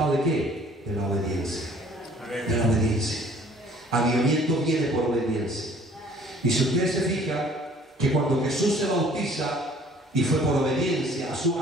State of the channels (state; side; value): normal; both; correlation 0.55